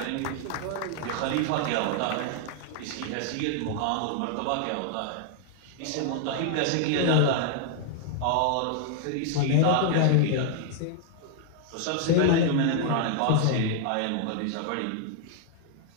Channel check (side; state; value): both; different; correlation 0.00